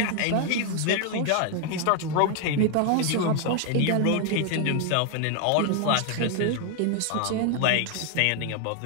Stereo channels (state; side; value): different; both; correlation 0.00